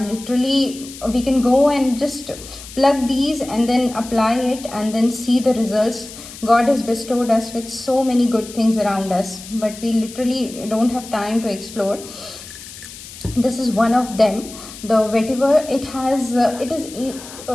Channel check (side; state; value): left; noise; hiss, 15 dB below the sound